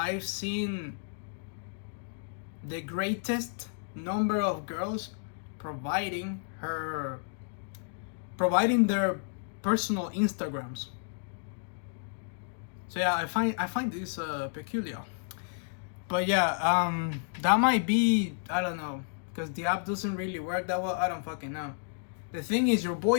seen the greatest number of girls providing their personal Instagrams. So yeah, I find this peculiar. But yeah, that might be, I don't know, because the app doesn't really work that well. I don't fucking know. The thing is, your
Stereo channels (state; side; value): silent; right; digital silence